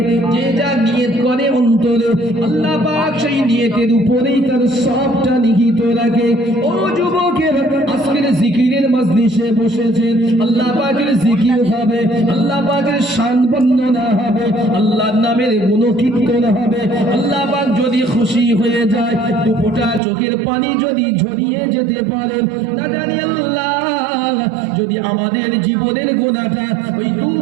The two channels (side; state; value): left; drops out; at 20.0 s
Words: যে যা নিয়ত করে অন্তরে, আল্লাহ পাক সেই নিয়তের উপরেই তার সবটা নিহিত রাখে। ও যুবকের, আজকের জিকিরের মজলিসে বসেছেন, আল্লাহ পাকের জিকির হবে, আল্লাহ পাকের শান বর্ণনা হবে, আল্লাহর নামের গুণকীর্তন হবে। আল্লাহ পাক যদি খুশি হয়ে যায়, দুপোটা চোখের পানি যদি ঝরিয়ে যেতে পারেন, না জানি আল্লাহ যদি আমাদের জীবনের গুনাহটা ওই